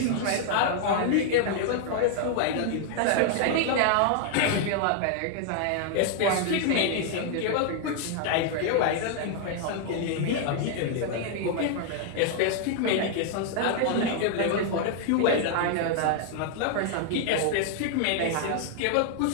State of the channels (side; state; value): both; different; correlation 0.00